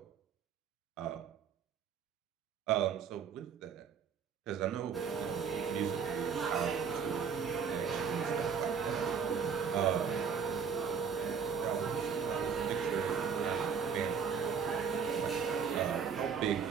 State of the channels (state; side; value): quieter; left; 6.4 dB